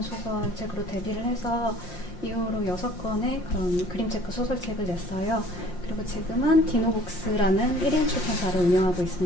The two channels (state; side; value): late; right; 5.7 ms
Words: 소설책으로 데뷔를 해서 이후로 6권의 그런 그림책과 소설책을 냈어요. 그리고 지금은 디노북스라는 1인 출판사를 운영하고